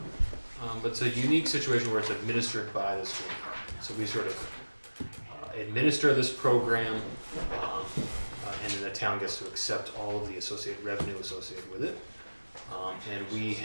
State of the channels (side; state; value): both; inverted; correlation -1.00